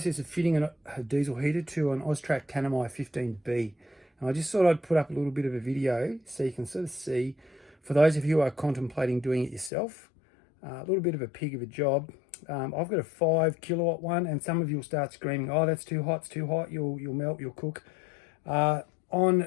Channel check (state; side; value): drops out; right; at 9.7 s